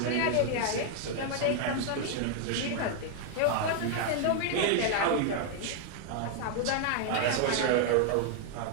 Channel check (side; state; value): both; different; correlation 0.00